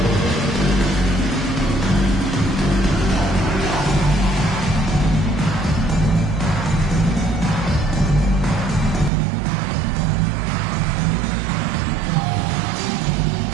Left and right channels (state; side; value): drops out; left; at 9.1 s